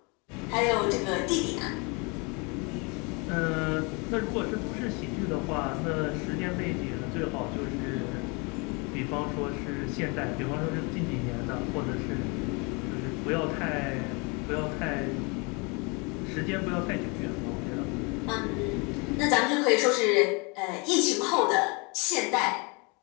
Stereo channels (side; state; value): right; quieter; 30.3 dB